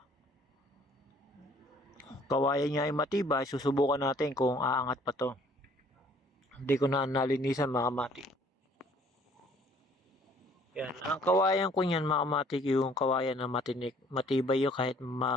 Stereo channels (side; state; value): both; normal; correlation 0.59